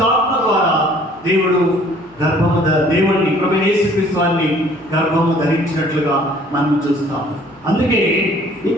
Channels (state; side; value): noise; left; hum, 28 dB below the sound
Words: ద్వారా దేవుడు దేవుడిని ప్రభువైన యేసుక్రీస్తు వారిని గర్భము ధరించినట్లుగా మనం చూస్తాం. అందుకే